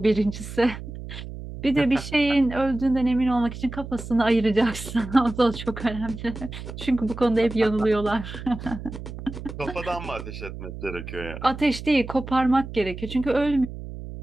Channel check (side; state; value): right; noise; hum, 10 dB below the sound